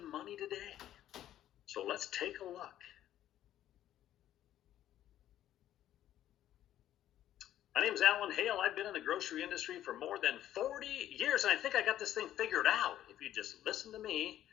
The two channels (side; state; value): right; quieter; 12.3 dB